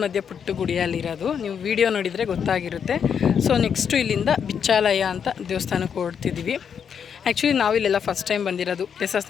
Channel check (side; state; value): right; quieter; 7.4 dB